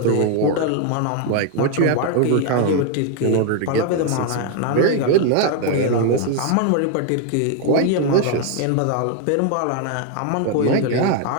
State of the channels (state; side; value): different; both; correlation 0.00